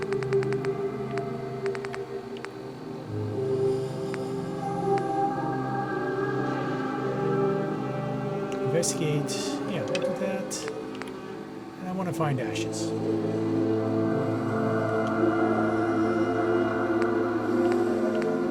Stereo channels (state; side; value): identical; both; correlation 1.00